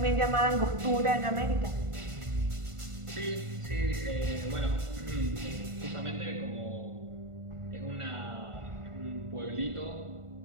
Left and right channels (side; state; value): left; late; 1.4 ms